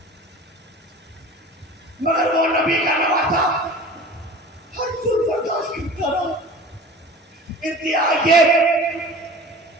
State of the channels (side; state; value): both; normal; correlation 0.39